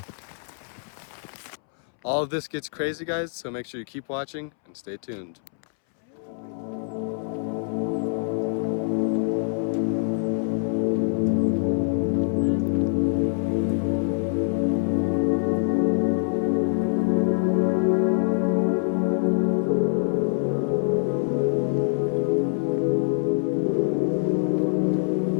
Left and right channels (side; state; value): right; silent; 62 dB below the other